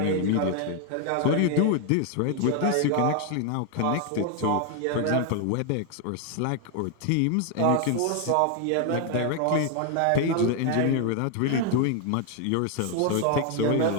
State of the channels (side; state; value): both; different; correlation 0.00